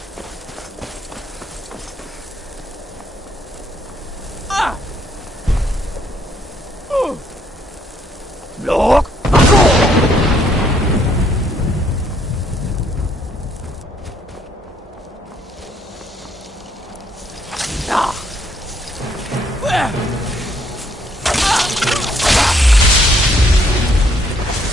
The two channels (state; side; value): normal; both; correlation 0.68